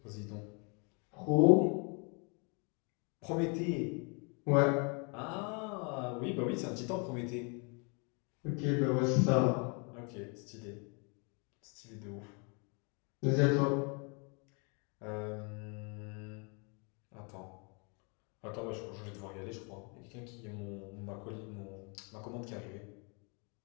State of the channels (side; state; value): right; quieter; 34.5 dB